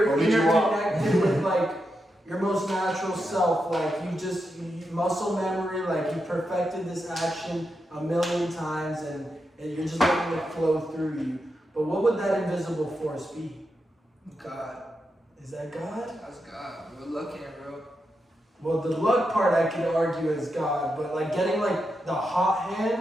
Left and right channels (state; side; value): normal; both; correlation 0.86